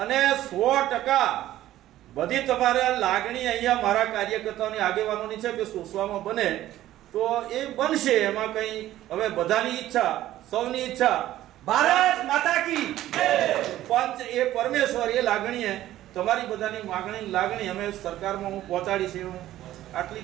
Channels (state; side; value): quieter; left; 14.0 dB